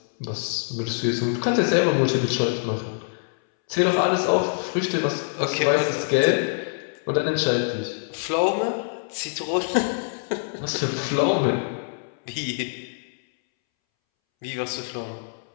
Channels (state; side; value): silent; right; 62 dB below the other